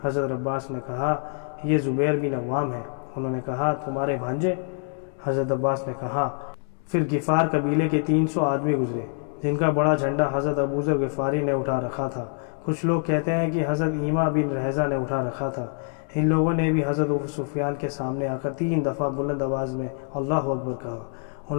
حضرت عباس نے کہا یہ زبیر بن عوام ہے۔ انہوں نے کہا تمہارے بھانجے؟ حضرت عباس نے کہا۔ پھر غفار قبیلے کے 300 آدمی گزرے جن کا بڑا جھنڈا حضرت ابو ذر غفاری نے اٹھا رکھا تھا۔ کچھ لوگ کہتے ہیں کہ حضرت ایما بن رحزہ نے اٹھا رکھا تھا۔ ان لوگوں نے بھی حضرت ابو سفیان کے سامنے آ کر 3 دفعہ بلند آواز میں اللہ اکبر کہا۔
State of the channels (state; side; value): silent; right; 61 dB below the other